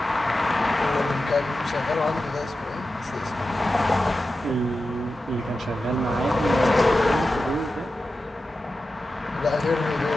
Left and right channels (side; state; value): both; normal; correlation 0.92